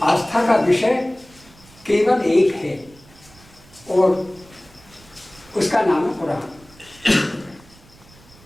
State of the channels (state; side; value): noise; right; rumble, 25 dB below the sound